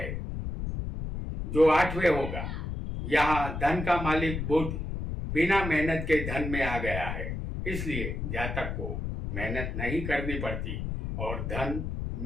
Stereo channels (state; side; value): noise; left; rumble, 4 dB below the sound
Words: जो 8वें होगा। यहाँ धन का मालिक बुध बिना मेहनत के धन में आ गया है, इसलिए जातक को मेहनत नहीं करनी पड़ती और धन